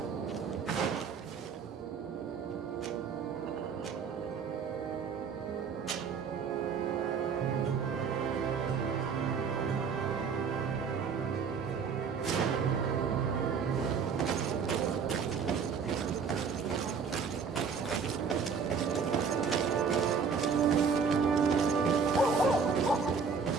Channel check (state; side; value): quieter; left; 5.9 dB